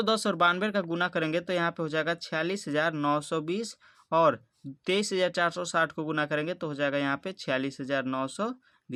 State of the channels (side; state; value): both; identical; correlation 1.00